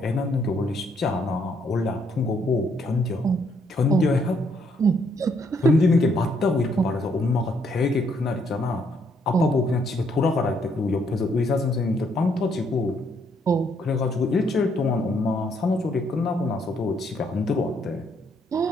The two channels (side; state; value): both; normal; correlation 0.71